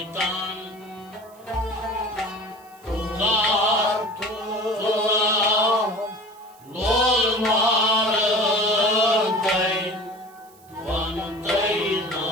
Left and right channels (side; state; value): right; noise; hiss, 28 dB below the sound